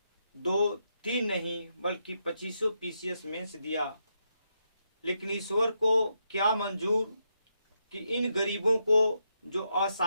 2, 3 नहीं बल्कि 25 PCS मेंस दिया। लेकिन ईश्वर को क्या मंजूर कि इन गरीबों को, जो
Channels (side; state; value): both; inverted; correlation -0.82